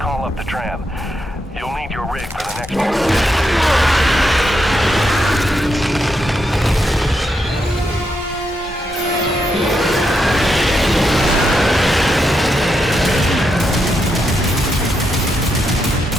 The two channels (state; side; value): normal; both; correlation 0.82